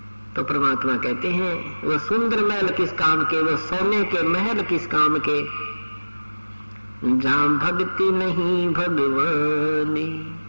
तो परमात्मा कहते हैं वो सुंदर महल किस काम के, वो सोने के महल किस काम के, जहां भक्ति नहीं भगवान,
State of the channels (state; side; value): inverted; both; correlation -1.00